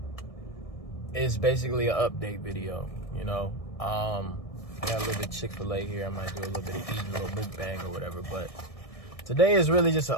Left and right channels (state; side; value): late; right; 1.6 ms